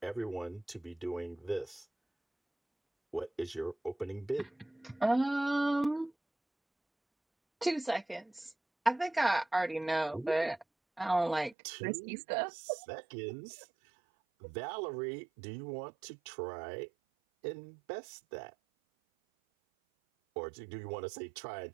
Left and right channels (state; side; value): drops out; left; at 11.6 s